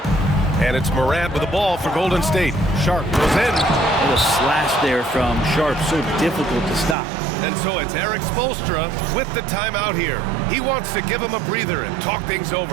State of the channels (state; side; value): drops out; left; at 7.0 s